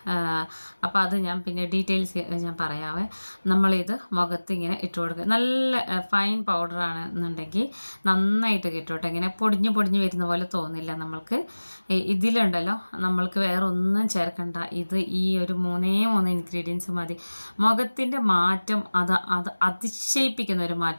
അപ്പോൾ അത് ഞാൻ പിന്നെ ഡീറ്റെയിൽസ് ഞാൻ പറയാവേ. നമ്മളിത് മുഖത്ത് ഇങ്ങനെ ഇട്ട് കൊടുക്കുക. നല്ല ഫൈൻ പൗഡറാണ് എന്നുണ്ടെങ്കിൽ നന്നായിട്ട് കിട്ടും. ഇങ്ങനെ പൊടിഞ്ഞ് വരുന്ന പോലെ തോന്നില്ല നമ്മൾക്ക്. ഇതിലുണ്ടല്ലോ നമ്മൾക്ക് വേറെ ഒന്നും ചേർക്കണ്ട. ഇത് ഈ ഒരു 3 ഇൻഗ്രീഡിയൻസ് മതി. മുഖത്തിൻ്റെ മാറ്റം അത് അതിശയിപ്പിക്കുന്ന ഒരു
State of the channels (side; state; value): both; inverted; correlation -1.00